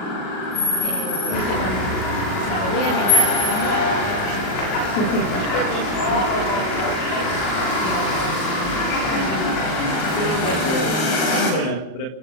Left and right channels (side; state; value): right; late; 38 ms